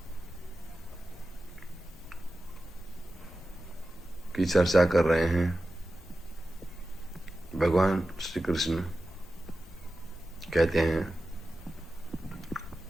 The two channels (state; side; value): normal; both; correlation 0.93